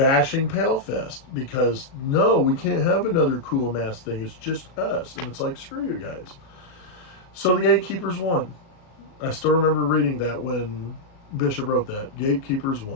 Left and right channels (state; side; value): late; right; 37 ms